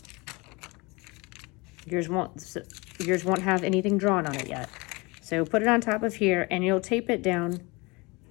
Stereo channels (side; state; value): right; quieter; 25.9 dB